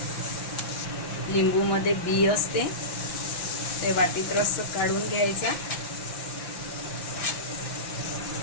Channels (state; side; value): late; right; 5.9 ms